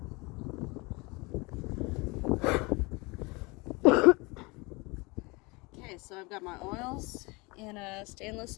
Okay, so I've got my oils in a stainless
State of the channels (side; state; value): right; quieter; 26.1 dB